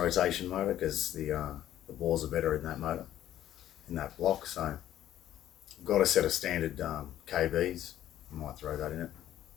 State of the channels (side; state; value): right; quieter; 12.3 dB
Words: motor because the bores are better in that motor, in that block. So I've got a set of standard KBs. I might throw that in it.